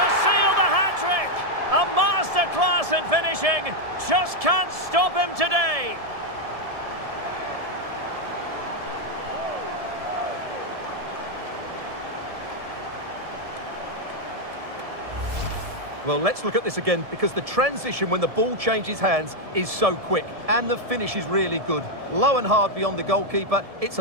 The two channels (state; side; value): late; left; 1.7 ms